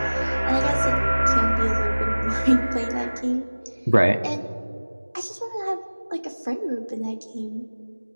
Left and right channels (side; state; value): both; inverted; correlation -1.00